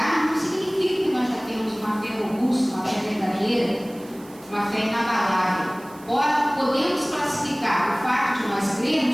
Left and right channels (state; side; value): noise; right; hiss, 23 dB below the sound